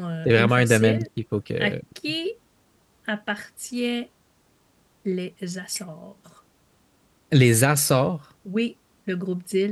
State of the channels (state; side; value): identical; both; correlation 1.00